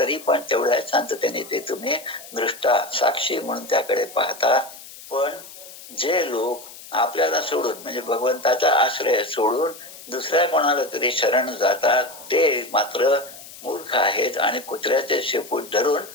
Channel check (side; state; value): left; noise; hiss, 17 dB below the sound